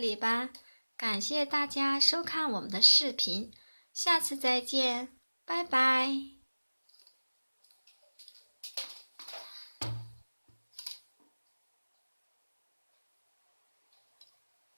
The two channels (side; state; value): both; inverted; correlation -1.00